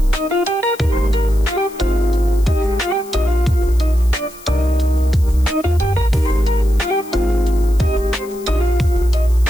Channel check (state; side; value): noise; left; hiss, 21 dB below the sound